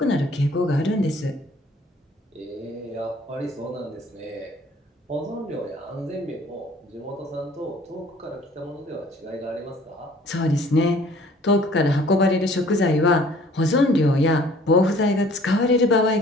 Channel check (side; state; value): both; normal; correlation 0.54